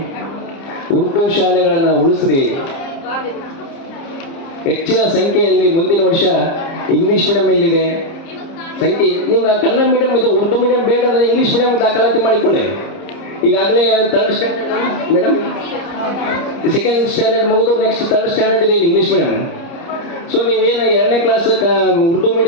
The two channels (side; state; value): right; late; 30 ms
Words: ಉರ್ದು ಶಾಲೆಗಳನ್ನು ಉಳಿಸ್ರಿ. ಹೆಚ್ಚಿನ ಸಂಖ್ಯೆಯಲ್ಲಿ ಮುಂದಿನ ವರ್ಷ ಇಂಗ್ಲೀಷ್ ಮೀಡಿಯಂ ಇಲ್ಲಿದೆ ಸಂಖ್ಯೆ. ನಿಮ್ಗೆ ಕನ್ನಡ ಮೀಡಿಯಂ ಇದು, ಉರ್ದು ಮೀಡಿಯಂ ಬೇಡ ಅಂದರೆ ಇಂಗ್ಲೀಷ್ ಮೀಡಿಯಂ ದಾಖಲಾತಿ ಮಾಡಿಕೊಳ್ಳಿ. ಈಗಾಗಲೇ 3rd standard madam, 2nd standard ಮುಗಿದು ನೆಕ್ಸ್ಟ್ 3rd ಸ್ಟ್ಯಾಂಡರ್ಡ್ ಇದೆ ಇಲ್ಲಿ ಇಂಗ್ಲೀಷ್ ಮೀಡಿಯಂ. ಸೊ ನೀವೇನು 2ನೇ ಕ್ಲಾಸ್ ಉರ್ದು